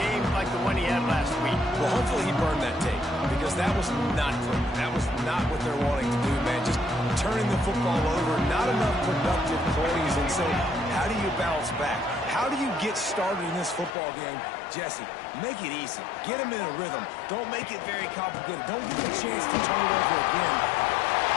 like the one he had last week? Well, hopefully he burned that tape, because that was not pretty. That was not what they're wanting to do, man. Just turning the football over, not enough productive plays. And so how do you bounce back? How do you get started in this football game? Jesse, make it easy. Get him in a rhythm. Don't make it very complicated. Don't give him a chance to turn it over again.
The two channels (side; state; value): right; drops out; at 14.0 s